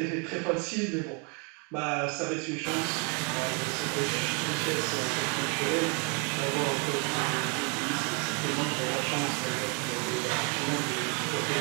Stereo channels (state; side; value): quieter; left; 35.2 dB